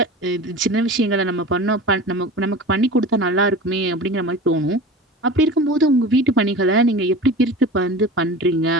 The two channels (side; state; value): both; normal; correlation 0.35